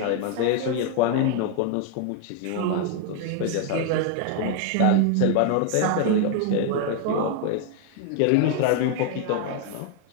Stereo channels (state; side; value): different; both; correlation 0.01